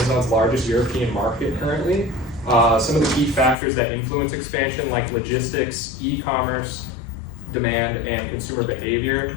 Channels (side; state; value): right; drops out; at 3.6 s